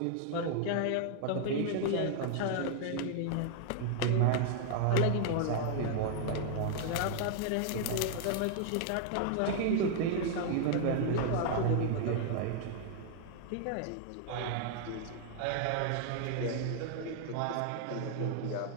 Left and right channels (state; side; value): different; both; correlation 0.00